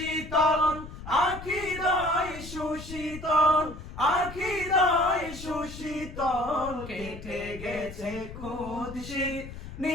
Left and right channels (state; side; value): noise; left; rumble, 12 dB below the sound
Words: আখিদয় সুশীতল, আখিদয় সুশীতল। কেটে গেছে কুৎসিত